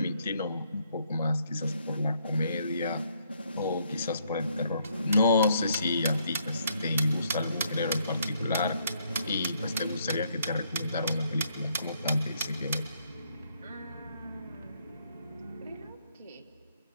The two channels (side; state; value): both; inverted; correlation -0.71